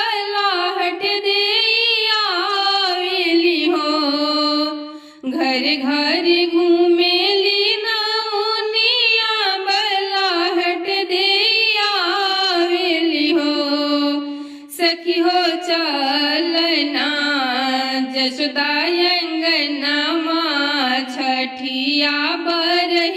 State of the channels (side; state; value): both; identical; correlation 1.00